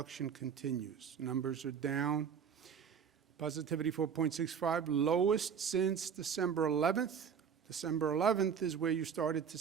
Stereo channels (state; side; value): quieter; left; 7.2 dB